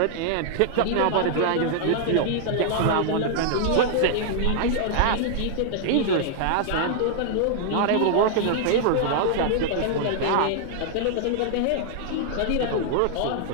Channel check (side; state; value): both; different; correlation -0.01